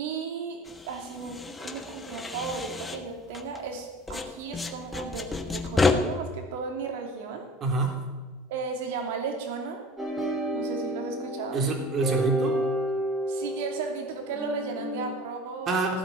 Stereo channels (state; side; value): normal; both; correlation 0.42